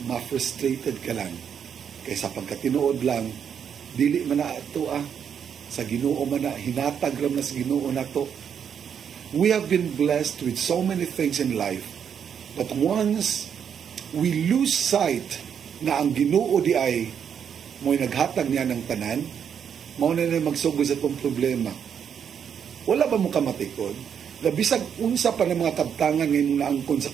ma-frustrated ka lang. Kaysa pagkatinuod lang, dili man na ito sa Ginoo man na, hinatag ram na sa Ginoo na to. We have been blessed with so many things in life, but once we lose sight na ang Ginoo di ay mo'y naghatag niya ng tanan, mao na magsugod sa itong problema. Wala ba mo kamatikod? Na bisag unsa pa ng mga kabtangan ngayon naangkon sa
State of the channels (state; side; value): quieter; left; 7.9 dB